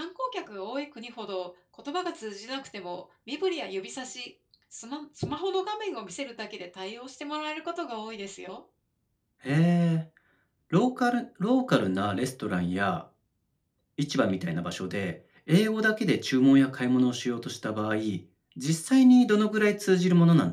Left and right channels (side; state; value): both; identical; correlation 1.00